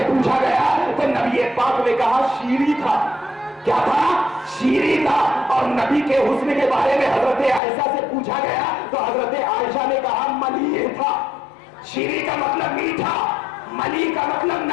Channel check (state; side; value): drops out; right; at 7.6 s